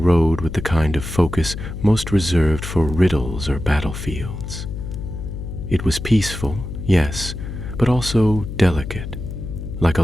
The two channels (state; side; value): noise; left; hum, 8 dB below the sound